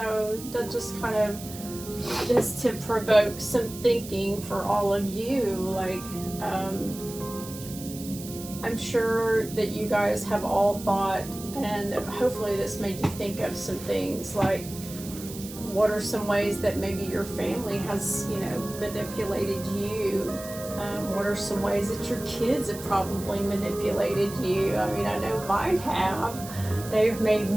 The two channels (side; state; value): right; noise; hiss, 13 dB below the sound